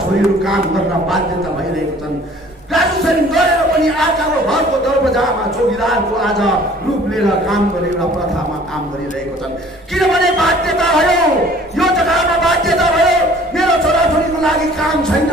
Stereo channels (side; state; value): both; normal; correlation 0.52